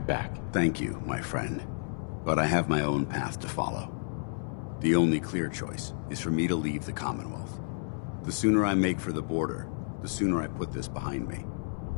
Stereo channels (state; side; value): silent; right; 57 dB below the other